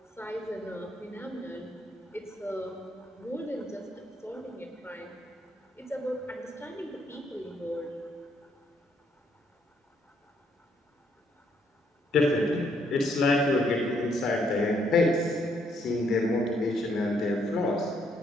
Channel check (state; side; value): normal; both; correlation 0.72